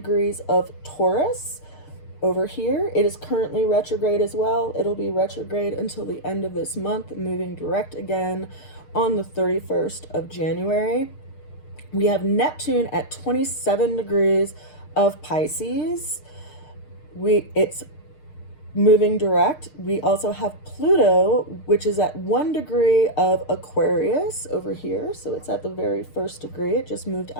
of Taurus over here. It is currently retrograde as well. It'll be retrograde until the end of this month, moving direct again on the 31st of January. We have Neptune at 27 degrees of Pisces. It's moving direct. We also have Pluto, which is at 1 degree of Aquarius over here. So it's at the very first degree. It just moved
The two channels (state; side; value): late; right; 6.6 ms